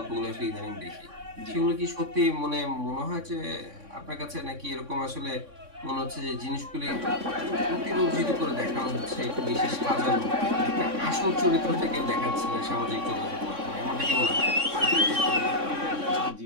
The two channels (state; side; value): late; left; 3.6 ms